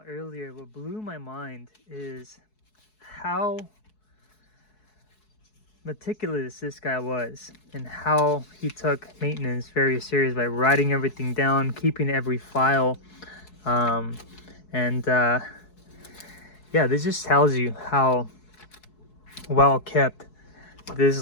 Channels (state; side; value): late; right; 4.7 ms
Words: earlier, what blew my mind is how meticulous this guy was and how he took maintenance very serious by writing everything down, keeping every file. Yeah, this just tells you how well kept